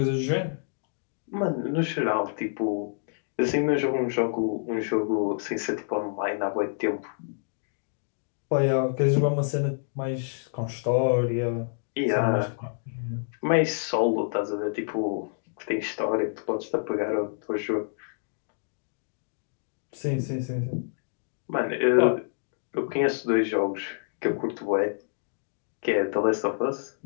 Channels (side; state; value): right; silent; digital silence